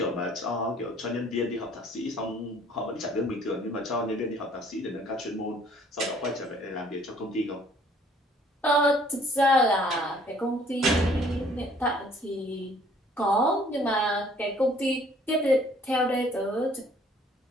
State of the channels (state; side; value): normal; both; correlation 0.58